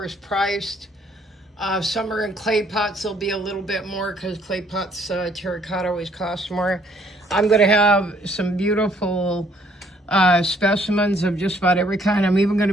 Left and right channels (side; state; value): both; normal; correlation 0.64